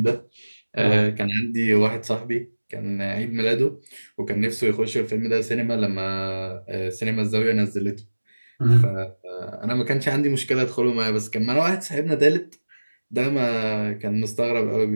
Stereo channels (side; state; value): both; inverted; correlation -1.00